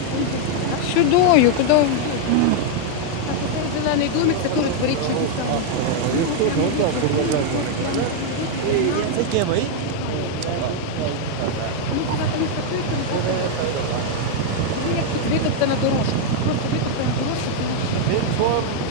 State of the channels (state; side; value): different; both; correlation 0.00